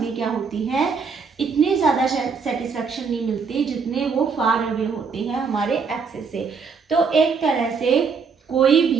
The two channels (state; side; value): quieter; left; 5.4 dB